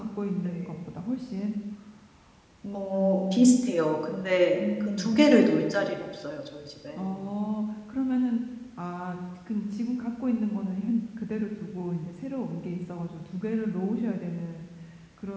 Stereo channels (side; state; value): both; identical; correlation 1.00